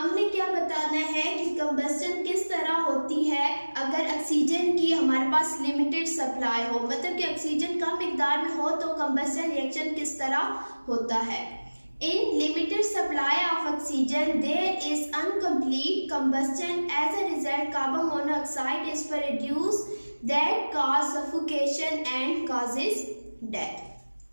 क्या बताना है कि कंबस्शन किस तरह होती है अगर ऑक्सीजन की हमारे पास लिमिटेड सप्लाई हो, मतलब कि ऑक्सीजन कम मिकदार में हो तो कंबस्शन रिएक्शन किस तरह होता है। In limited supply of oxygen there is incomplete combustion, as a result carbon monoxide is produced that cause suffocation and causes death.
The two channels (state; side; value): inverted; both; correlation -1.00